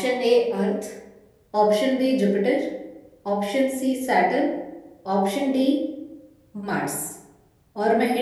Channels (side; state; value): both; identical; correlation 1.00